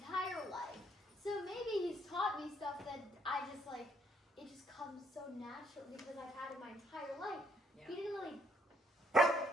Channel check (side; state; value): both; normal; correlation 0.69